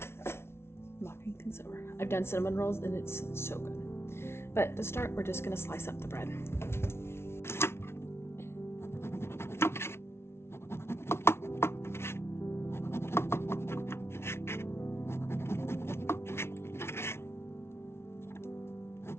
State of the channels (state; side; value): late; right; 0.12 ms